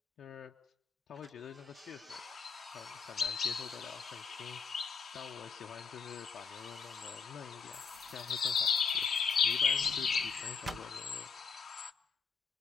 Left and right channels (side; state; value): right; quieter; 5.6 dB